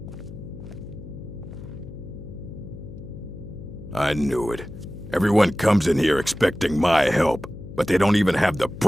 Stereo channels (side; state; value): left; noise; hum, 13 dB below the sound